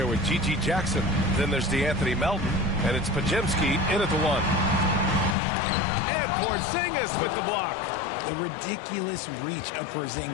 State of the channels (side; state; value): right; drops out; at 5.4 s